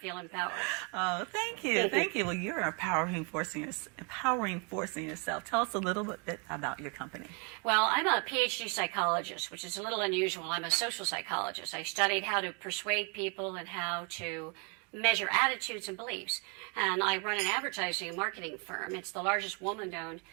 empowered. Oh, thank you. Thank you. Well, you're an empowering force in yourself. Tell us a little bit about your company. Well, I'm a PhD psychologist, which is a little unusual. I'm a social psychologist. I studied how to persuade people and how to measure attitudes and beliefs. And I run an advertising and marketing firm. It's the largest woman-owned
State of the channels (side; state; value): left; quieter; 35.1 dB